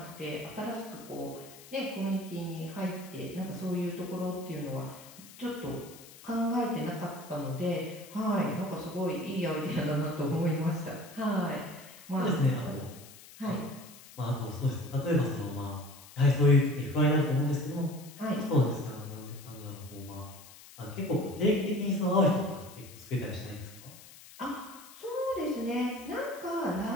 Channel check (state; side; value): noise; left; hiss, 19 dB below the sound